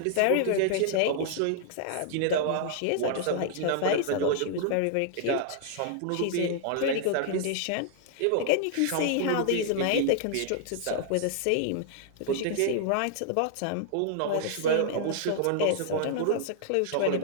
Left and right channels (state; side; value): different; both; correlation -0.01